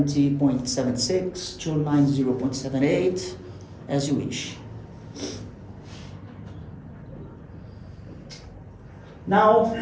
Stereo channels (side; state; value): both; identical; correlation 1.00